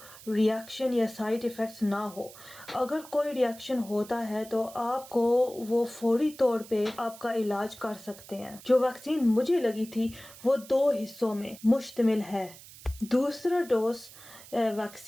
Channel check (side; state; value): right; noise; hiss, 18 dB below the sound